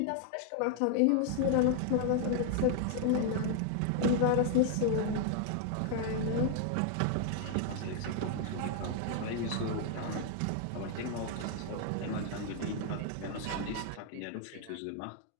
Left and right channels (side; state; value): both; different; correlation 0.00